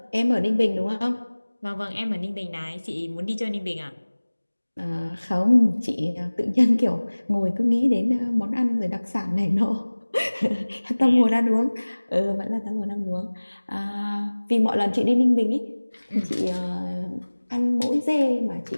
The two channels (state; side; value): inverted; both; correlation -1.00